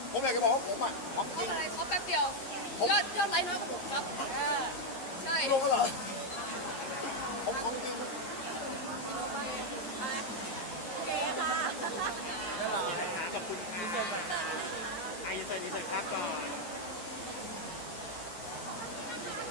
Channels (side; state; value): right; late; 11 ms